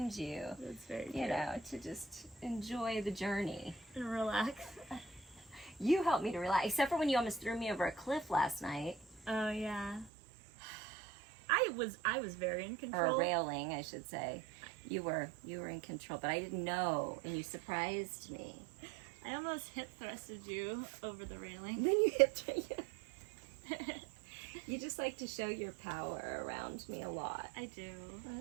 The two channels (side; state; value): left; drops out; at 10.1 s